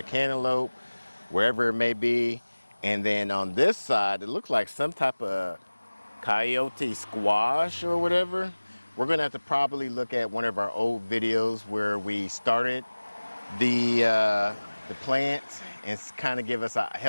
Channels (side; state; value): both; inverted; correlation -1.00